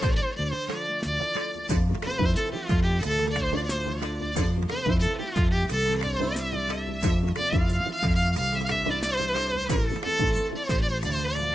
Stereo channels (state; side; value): normal; both; correlation 0.92